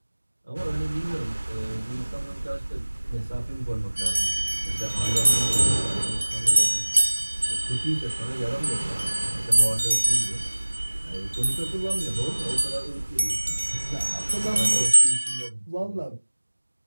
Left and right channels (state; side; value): inverted; both; correlation -1.00